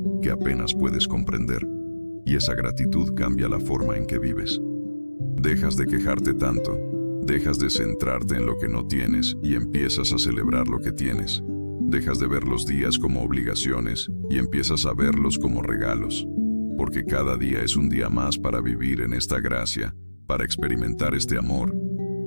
que apenas puedes comprender. Y esa gratitud cambia la forma en que vives. Dejas de quejarte tanto, dejas de centrarte en lo que no tienes y empiezas a celebrar lo que tienes. Dejas de ver los días como obligaciones y empiezas a verlos como regalos. Porque cada día es un día más para vivir en esta gracia, para experimentar este amor,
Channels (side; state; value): both; inverted; correlation -1.00